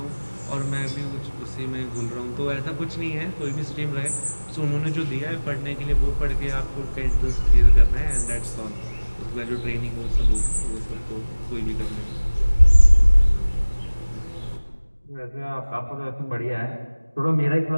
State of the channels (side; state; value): both; inverted; correlation -1.00